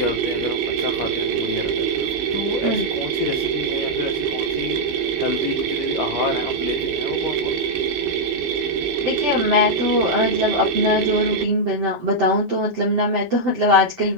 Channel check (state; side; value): normal; both; correlation -0.04